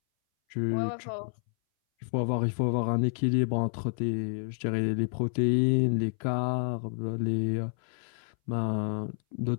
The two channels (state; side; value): silent; right; 58 dB below the other